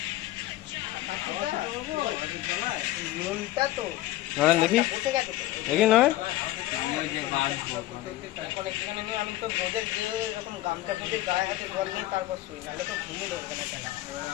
নরেন দেখি দেখি নরেন আমি তো রোদের দিয়ে এরকম গামছা পুজো গায়ে হাতে জল নিয়ে তারপর শুই, নাহলে তো ঘুমে ধরবে না কেনা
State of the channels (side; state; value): right; quieter; 16.0 dB